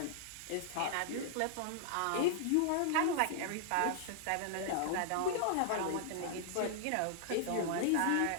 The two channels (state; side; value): different; both; correlation -0.01